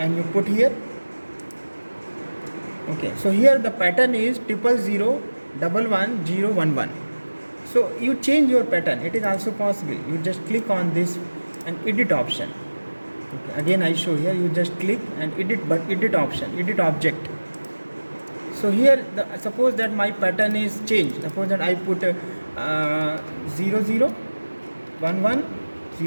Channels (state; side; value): inverted; both; correlation -1.00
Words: you put here. Okay, so here the pattern is 000 11 0 11. So you change your pattern. It is also possible. You just click on this and edit option. Okay, again I show here. You just click and edit, but edit option, edit object. So here suppose that my pattern is changed. Suppose that I put 0 0 1 1